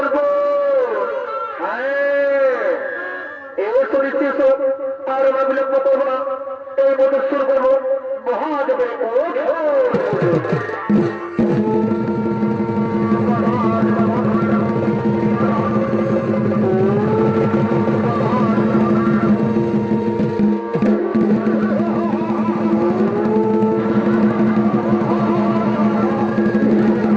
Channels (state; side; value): identical; both; correlation 1.00